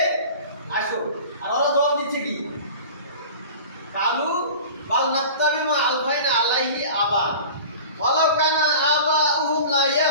আসো। আর ওরা জবাব দিচ্ছে কি? কালু বাল নাত্তাবি মা আলফাইনা আলাইহি আবা ওয়ালাউ কানা আবাউহুম লা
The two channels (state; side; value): inverted; both; correlation -0.38